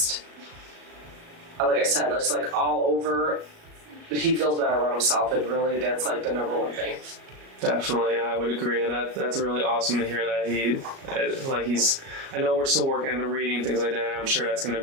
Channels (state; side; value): late; left; 37 ms